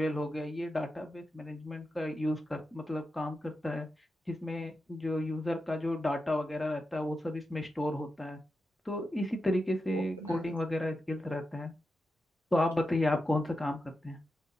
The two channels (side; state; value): both; normal; correlation 0.89